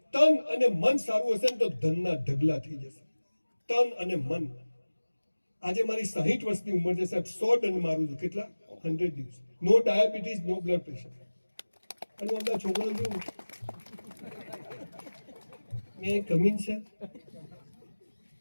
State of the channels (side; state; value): both; inverted; correlation -1.00